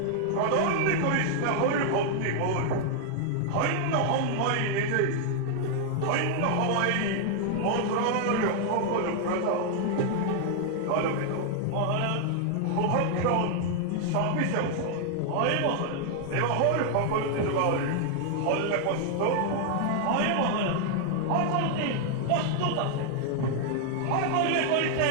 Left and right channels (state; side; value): different; both; correlation 0.00